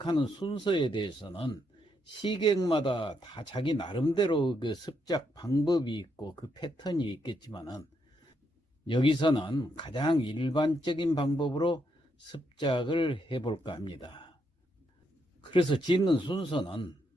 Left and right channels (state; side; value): normal; both; correlation 0.78